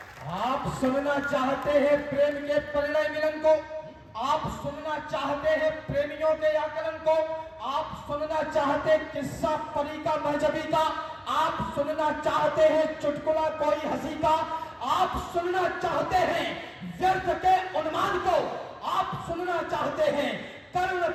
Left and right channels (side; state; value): both; identical; correlation 1.00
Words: आप सुनना चाहते हैं प्रेम के परिणय मिलन को, आप सुनना चाहते हैं प्रेमियों के आकलन को, आप सुनना चाहते किस्सा परी का महजबी का, आप सुनना चाहते हैं चुटकुला कोई हंसी का, आप सुनना चाहते हैं व्यर्थ के उन्मान को, आप सुनना चाहते हैं कर्ण